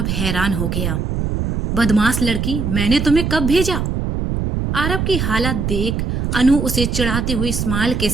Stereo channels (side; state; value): right; noise; rumble, 1 dB below the sound